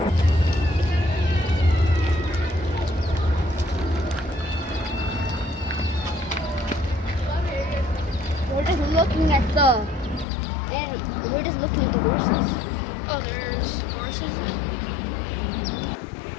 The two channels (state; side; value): drops out; right; at 10.2 s